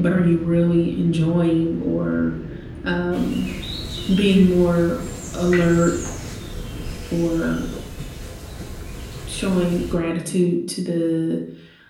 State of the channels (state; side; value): identical; both; correlation 1.00